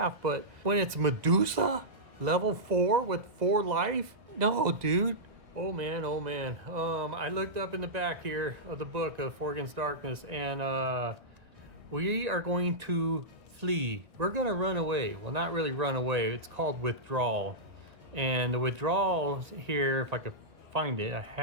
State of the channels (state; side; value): late; left; 1.8 ms